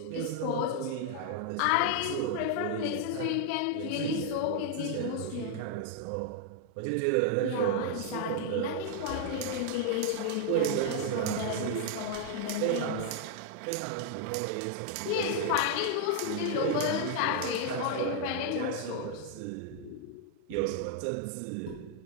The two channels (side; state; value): both; different; correlation 0.00